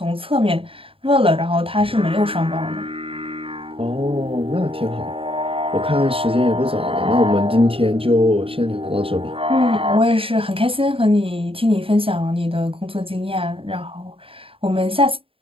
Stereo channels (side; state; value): left; late; 0.27 ms